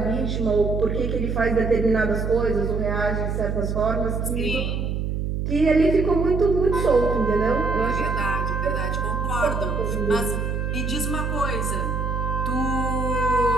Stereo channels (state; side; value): noise; right; hum, 1 dB below the sound